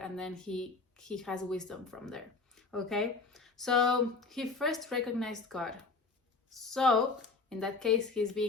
and then he has wisdom from there. Okay, so he first recognized God. So in that case, he's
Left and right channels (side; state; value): right; quieter; 4.2 dB